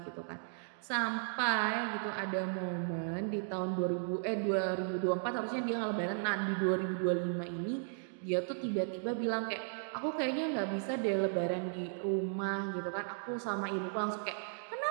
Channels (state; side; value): silent; left; digital silence